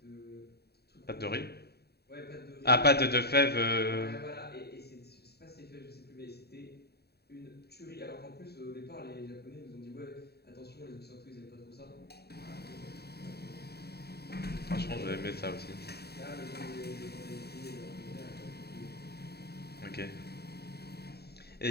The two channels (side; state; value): right; late; 0.47 ms